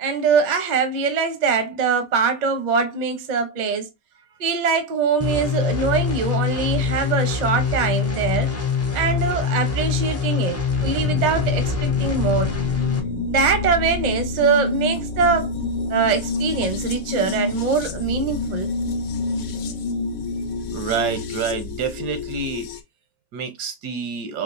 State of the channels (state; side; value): normal; both; correlation 0.02